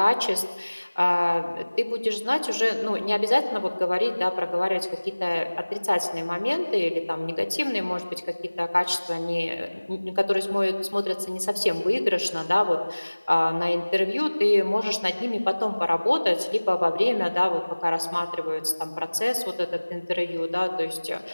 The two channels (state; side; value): inverted; both; correlation -1.00